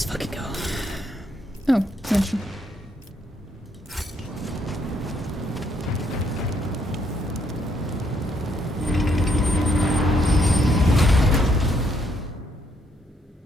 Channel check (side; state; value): both; normal; correlation 0.72